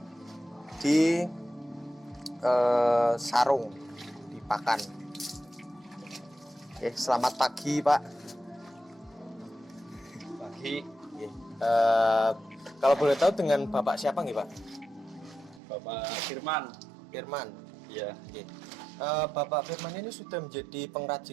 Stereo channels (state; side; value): drops out; left; at 15.6 s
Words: di sarung di pakan. Selamat pagi Pak. Pagi. Kalau boleh tahu dengan Bapak siapa nih Pak? Bapak Firman. Firman. Iya. Oke. Bapak Firman ini sudah menjadi